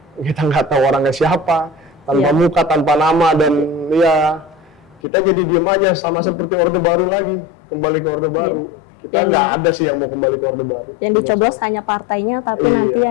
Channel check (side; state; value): right; drops out; at 5.0 s